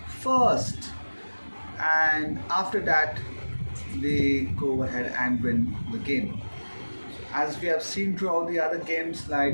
first, and after that they go ahead and win the game. As we have seen throughout the other games,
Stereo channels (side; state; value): both; inverted; correlation -1.00